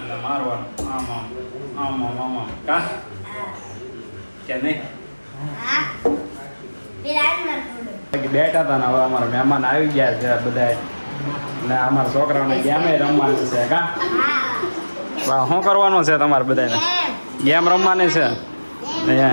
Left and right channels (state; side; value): inverted; both; correlation -1.00